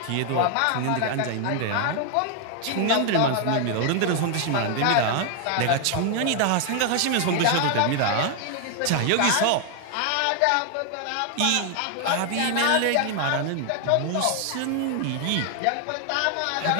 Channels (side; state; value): both; different; correlation 0.00